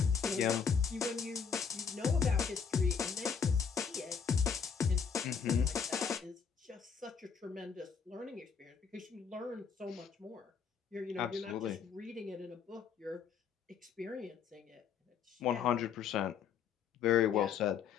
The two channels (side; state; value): right; quieter; 6.6 dB